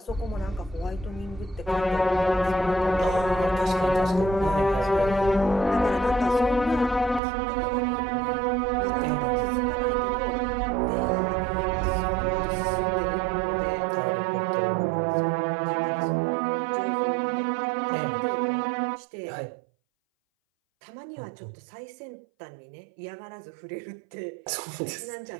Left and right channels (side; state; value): left; drops out; at 7.2 s